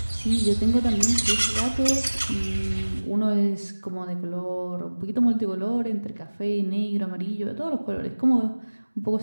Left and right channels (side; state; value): both; inverted; correlation -1.00